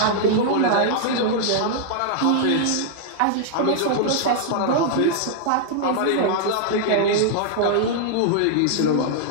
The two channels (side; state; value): both; different; correlation -0.01